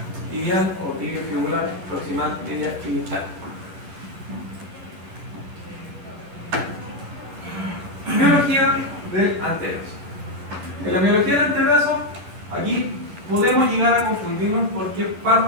tibial o tibio fibular, proximal, media y distal. Miología del antebrazo. En la miología del antebrazo, aquí podemos llegar a confundirnos porque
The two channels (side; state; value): left; late; 10 ms